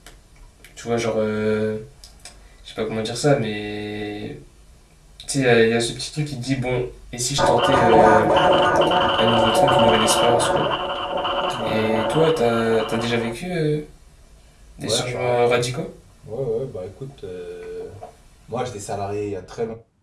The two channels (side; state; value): both; identical; correlation 1.00